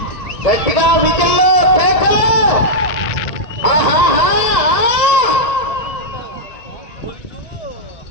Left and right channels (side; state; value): right; late; 1.7 ms